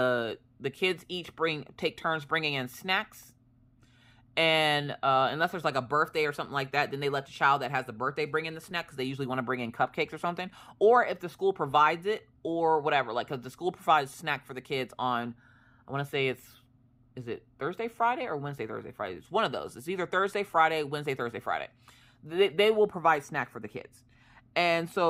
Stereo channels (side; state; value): both; identical; correlation 1.00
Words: kids each take turns bringing in snacks. And unless there's like a birthday or something like that, then they let the child that has the birthday bring in the snack, because they usually want to bring in cupcakes or something. Or if the school provides it or whatever, like, because the school provides snack for the kids on, I want to say is it Thursday, Friday, or Wednesday, Thursday, Friday? It's one of those. It's either Thursday, Friday, Wednesday, Thursday, Friday. They will provide snack for the kids. And